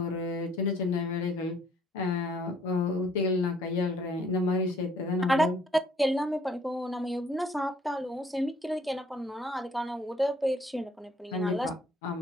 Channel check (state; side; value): normal; both; correlation 0.62